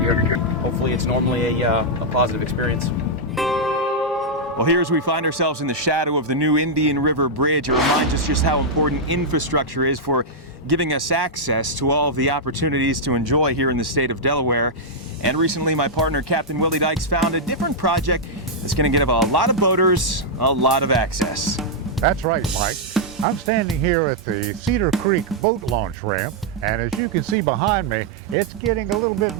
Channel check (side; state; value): both; normal; correlation -0.05